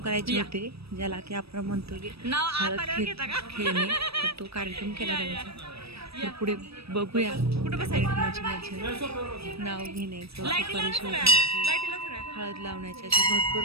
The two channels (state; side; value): late; left; 0.78 ms